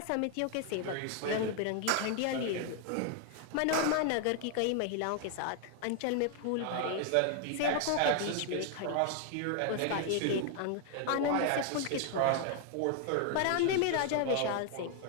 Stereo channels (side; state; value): both; different; correlation 0.00